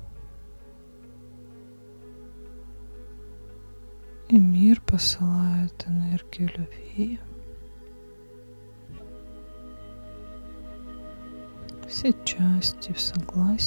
И мир посылает энергию любви. Все части в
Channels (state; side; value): inverted; both; correlation -1.00